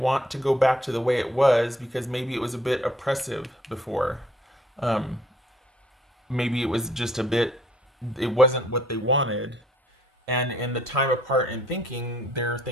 to go back to the way it was because maybe it was a bit oppressive before. Um, Maybe it was just a bit, it wasn't what they wanted. And in the time apart and thinking, they're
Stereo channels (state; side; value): normal; both; correlation 0.62